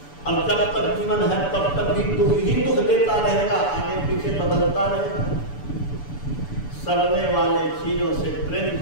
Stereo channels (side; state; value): right; late; 6.9 ms